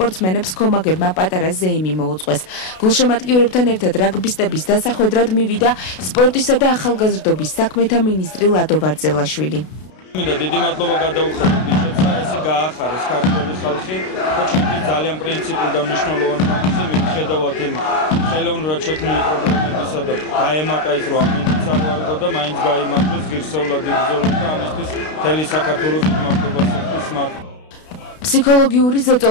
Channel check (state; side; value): late; right; 32 ms